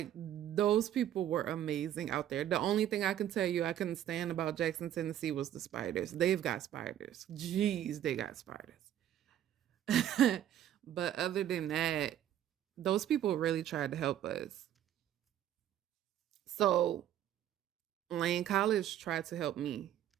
those people were amazing out there. The only thing I can tell you I couldn't stand about Jackson, Tennessee was the spiders. They've got spiders. Jeez, they got spiders. But other than that, those people really tried to help us. So Lane College tried to help me.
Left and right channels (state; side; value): quieter; left; 11.2 dB